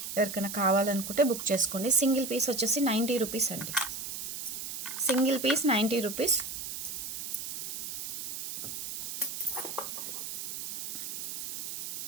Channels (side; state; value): right; noise; hiss, 5 dB below the sound